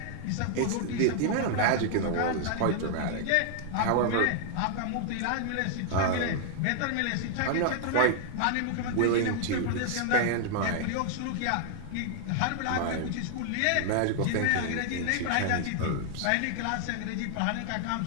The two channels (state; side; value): different; both; correlation 0.00